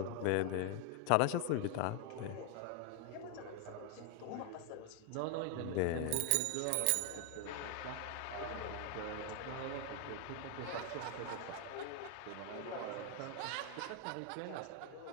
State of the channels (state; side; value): different; both; correlation 0.00